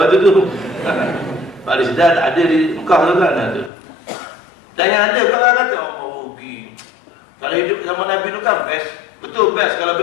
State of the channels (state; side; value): drops out; right; at 3.7 s